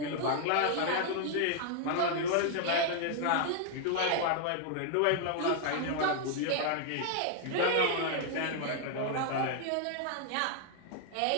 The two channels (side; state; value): both; different; correlation 0.00